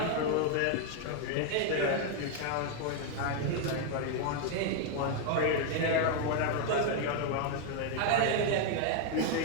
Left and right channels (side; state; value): both; different; correlation 0.00